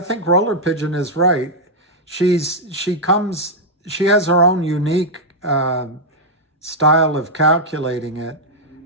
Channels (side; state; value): both; normal; correlation -0.05